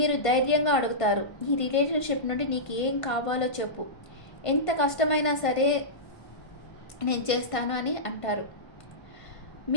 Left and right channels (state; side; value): late; right; 1.5 ms